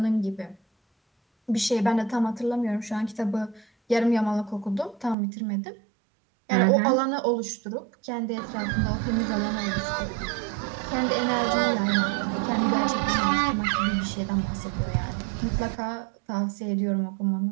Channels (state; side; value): drops out; left; at 5.2 s